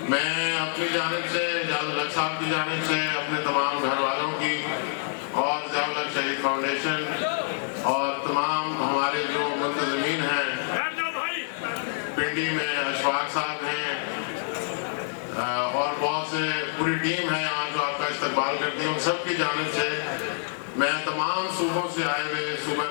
میں اپنی جانب سے ضیاء الحق صاحب کی جانب سے اپنے تمام گھر والوں کی اور ضیاء الحق شہید فاؤنڈیشن اور تمام ہمارے جو منتظمین ہیں پنڈی میں اشفاق صاحب ہیں اور بہت سے پوری ٹیم ہے یہاں جو آپ کا استقبال کرتی ہوں, سب کی جانب سے میں تمام صوبوں سے آئے ہوئے, صوبہ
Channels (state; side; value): silent; right; digital silence